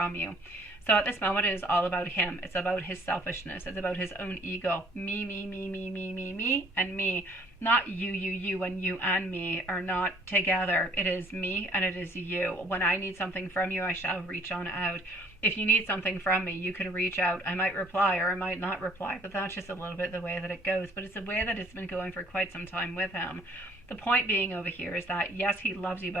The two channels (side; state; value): both; normal; correlation 0.59